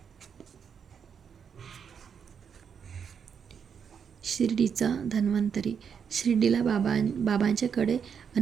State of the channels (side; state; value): left; quieter; 7.1 dB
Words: शिर्डीचा धन्वंतरी. शिर्डीला बाबांच्याकडे